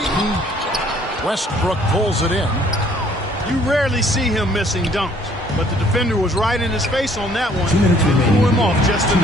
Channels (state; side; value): normal; both; correlation 0.60